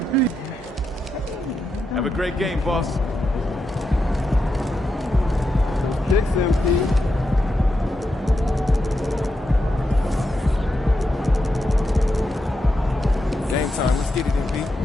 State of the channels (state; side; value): normal; both; correlation 0.86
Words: Have a great game, boss. Kicks, MP. Game time. Let's get it,